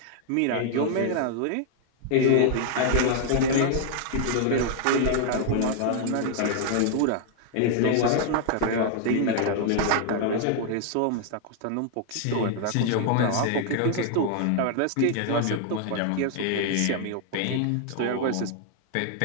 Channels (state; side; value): different; both; correlation 0.00